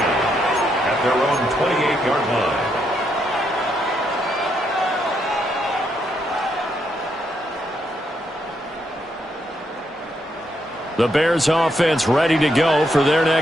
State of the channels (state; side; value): normal; both; correlation 0.77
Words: their own 28-yard line. The Bears offense ready to go for their